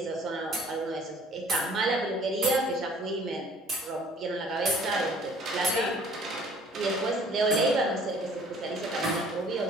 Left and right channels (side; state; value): both; normal; correlation 0.54